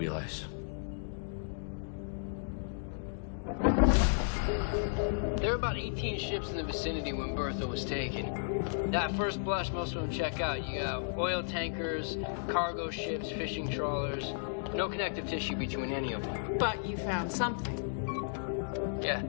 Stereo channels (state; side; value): silent; right; 55 dB below the other